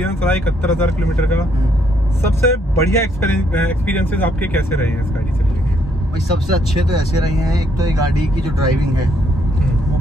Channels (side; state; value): both; normal; correlation 0.71